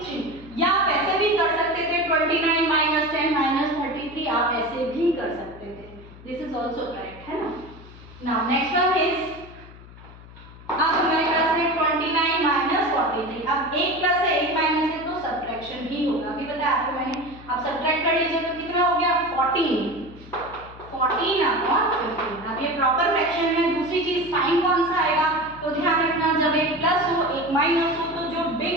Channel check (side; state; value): left; noise; hum, 19 dB below the sound